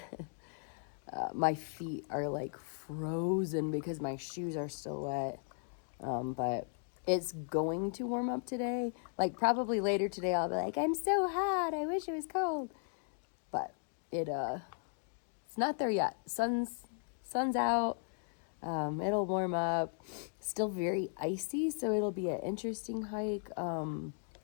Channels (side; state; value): right; silent; 53 dB below the other